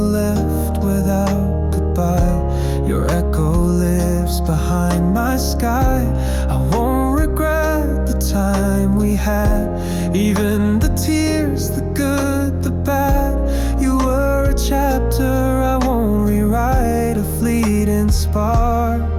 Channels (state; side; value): identical; both; correlation 1.00